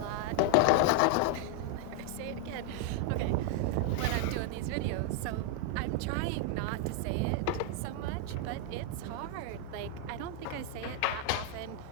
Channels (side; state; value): both; different; correlation 0.00